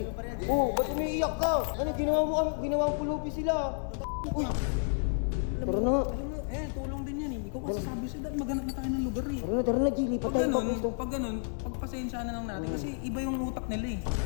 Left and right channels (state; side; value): silent; right; digital silence